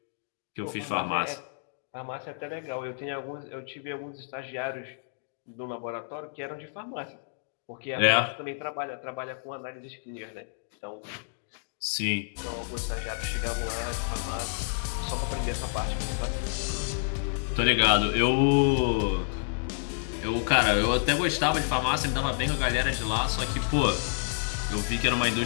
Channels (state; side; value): silent; right; digital silence